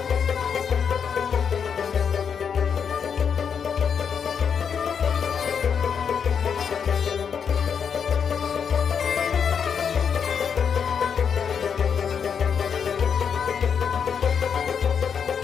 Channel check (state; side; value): quieter; right; 7.0 dB